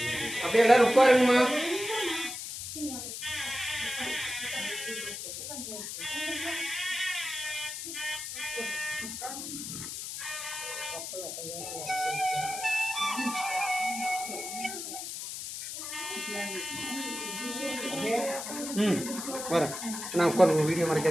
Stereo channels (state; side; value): noise; left; hiss, 7 dB below the sound